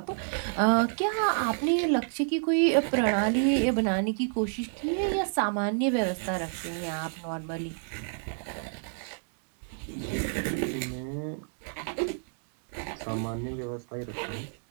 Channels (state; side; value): silent; left; 58 dB below the other